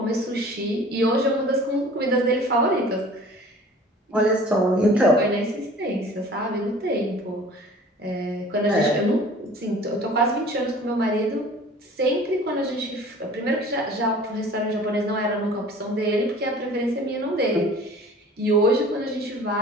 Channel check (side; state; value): both; normal; correlation 0.47